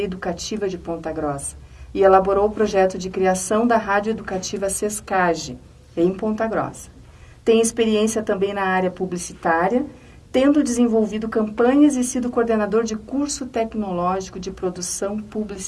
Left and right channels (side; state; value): both; identical; correlation 1.00